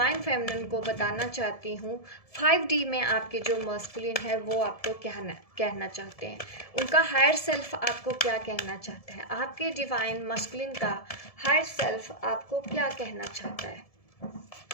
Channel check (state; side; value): late; right; 1.7 ms